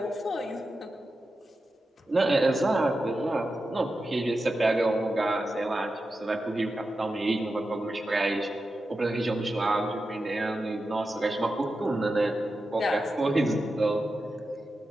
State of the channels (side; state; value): both; normal; correlation 0.91